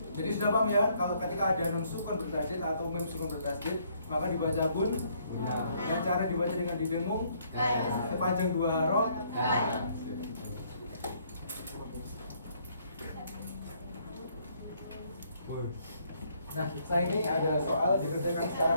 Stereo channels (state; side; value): inverted; both; correlation -0.67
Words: jadi sudah paham ya, kalau ketika ada nun sukun bertasydid atau mim sukun bertasydid, maka dibaca bun. Dengan cara dibaca dengan didengung sepanjang 2 harokat. Nah, saya ini ada soal dikerjakan